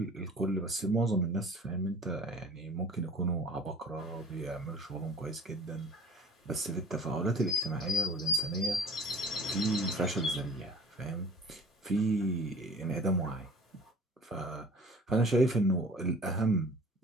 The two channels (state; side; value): normal; both; correlation 0.46